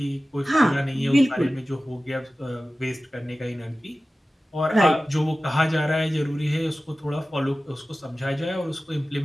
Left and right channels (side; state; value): both; normal; correlation 0.96